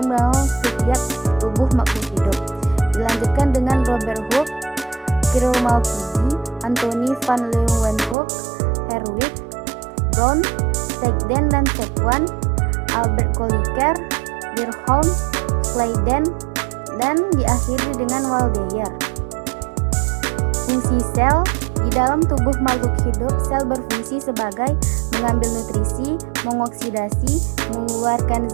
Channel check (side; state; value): left; drops out; at 8.2 s